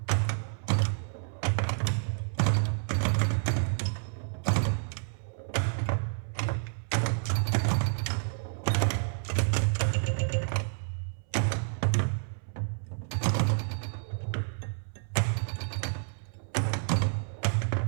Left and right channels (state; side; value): silent; left; 58 dB below the other